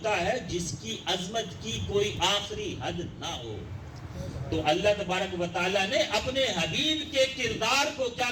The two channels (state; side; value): identical; both; correlation 1.00